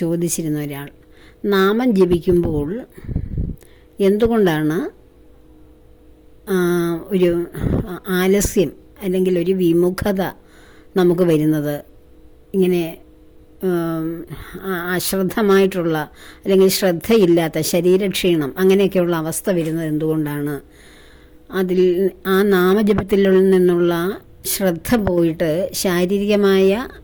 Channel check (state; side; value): identical; both; correlation 1.00